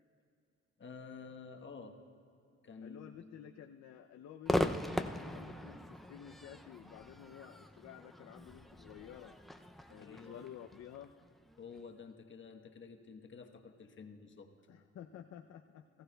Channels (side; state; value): both; normal; correlation 0.81